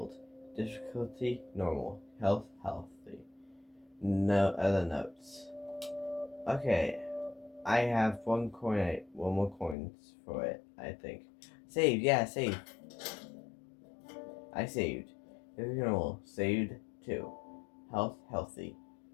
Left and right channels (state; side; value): drops out; right; at 9.8 s